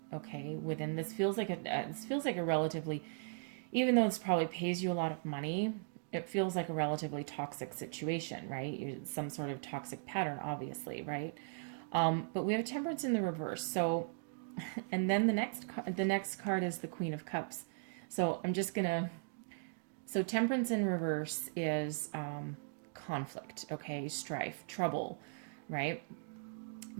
Okay. Within this feels like a relatively, even though this probably pays you a lot of money, it feels like a relatively toxic situation, right? Some sort of toxic pattern, obviously, right? But we have Temperance in the reverse. So, and then the next card is the Queen of Cups. So so Temperance in reverse is conflict, okay? Strife, trouble, right?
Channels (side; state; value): left; silent; digital silence